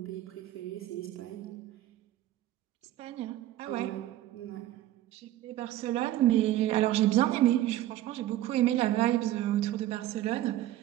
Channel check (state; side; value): quieter; left; 14.1 dB